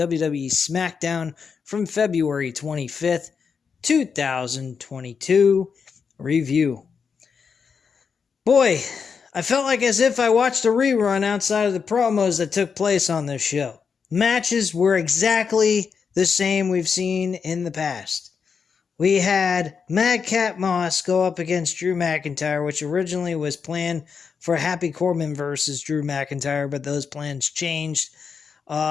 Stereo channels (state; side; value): quieter; right; 6.0 dB